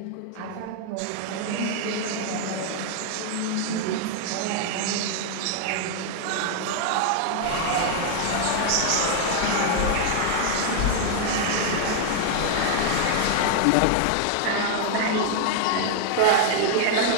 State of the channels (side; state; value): both; different; correlation 0.00